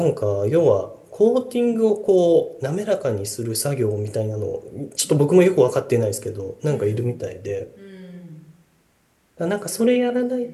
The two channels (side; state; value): both; identical; correlation 1.00